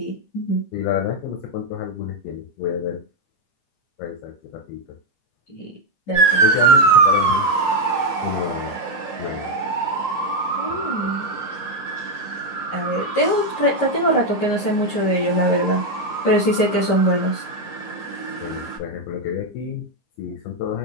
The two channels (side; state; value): right; late; 14 ms